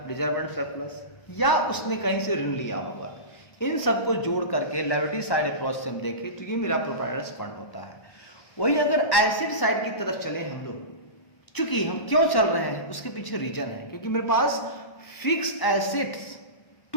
रिजर्व एंड सरप्लस, या उसने कहीं से ऋण लिया होगा। इन सबको जोड़ करके लायबिलिटी साइड अप्रोच से हम देखें तो ये मेरा प्रोप्राइटर्स फंड होता है। वही अगर एसेट साइड की तरफ चले हम लोग, चूंकि हम क्यों चल रहे हैं उसके पीछे रीजन है, क्योंकि मेरे पास fix assets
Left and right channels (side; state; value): right; late; 1.1 ms